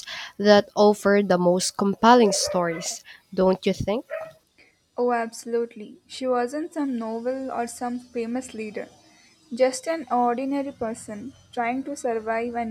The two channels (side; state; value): both; identical; correlation 1.00